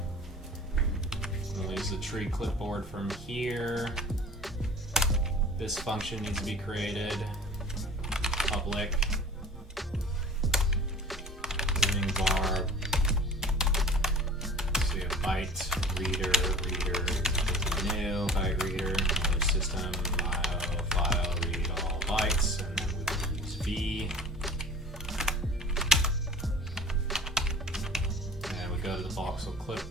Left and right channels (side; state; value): both; normal; correlation 0.43